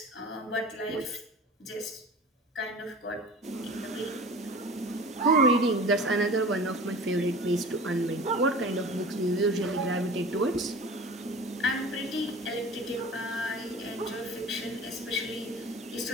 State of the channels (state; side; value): normal; both; correlation 0.39